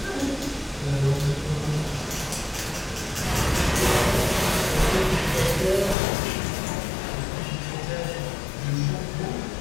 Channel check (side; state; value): right; drops out; at 6.0 s